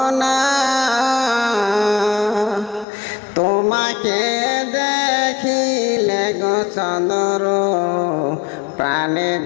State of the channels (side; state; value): right; drops out; at 2.9 s